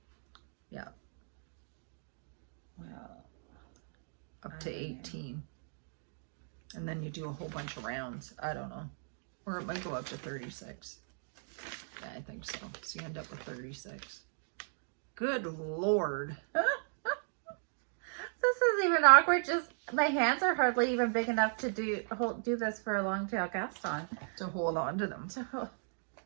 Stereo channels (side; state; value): left; silent; digital silence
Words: Yeah. Well, Up to 18. And then you do a whole bunch of rounds. I don't know. Or it might go up to 36. Yeah, I think so. So you end up with 36. Good Lord. this is even awkward. Just my hands are hardly even big enough to do this for a long tail cast on. To hold on to them.